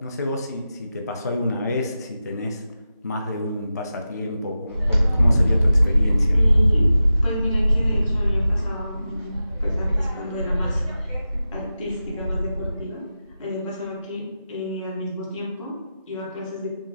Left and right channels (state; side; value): inverted; both; correlation -0.92